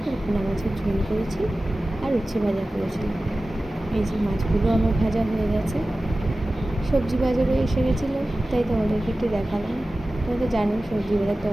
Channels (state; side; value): normal; both; correlation 0.96